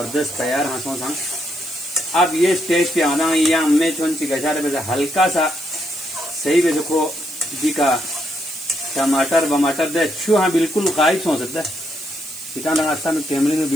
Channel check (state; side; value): noise; right; hiss, 14 dB below the sound